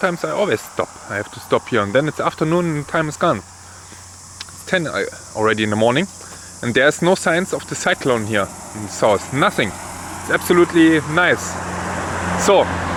I always stop. I have to stop here, and then it's afternoon and time is gone. It's 10 already in the morning, and there's no signs of the cyclone here in the south. Nothing. It's absolutely nice. So,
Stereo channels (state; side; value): identical; both; correlation 1.00